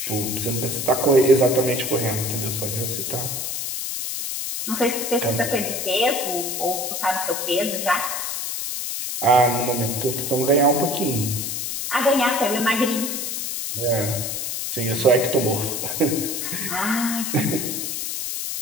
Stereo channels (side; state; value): left; noise; hiss, 3 dB below the sound